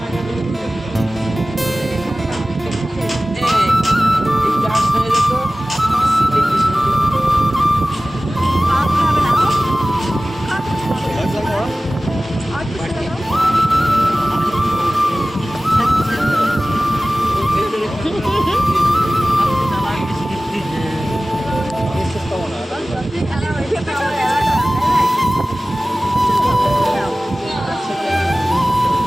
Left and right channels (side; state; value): both; normal; correlation 0.97